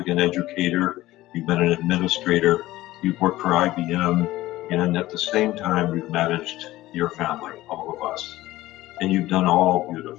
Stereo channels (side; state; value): right; quieter; 16.7 dB